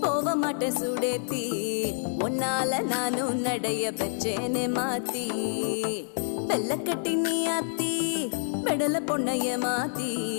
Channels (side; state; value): right; silent; digital silence